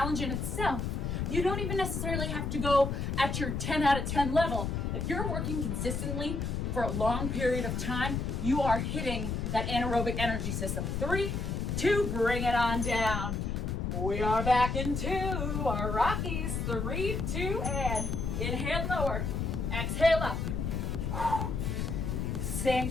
in itself. You don't even necessarily have to go at your 10 out of 10 level. If you're working consistently for a long period of time, you are hitting that anaerobic energy system. 3, 2, bring it on down. We are back into our Rockies. 3, 2, and inhale lower, exhale up. Staying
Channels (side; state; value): left; noise; rumble, 1 dB below the sound